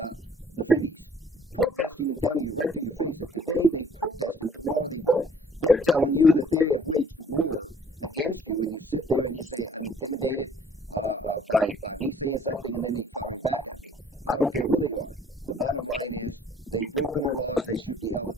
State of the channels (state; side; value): normal; both; correlation 0.58